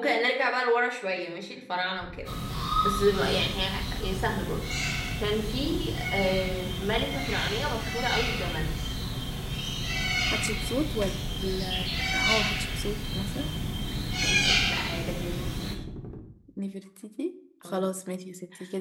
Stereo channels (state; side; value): identical; both; correlation 1.00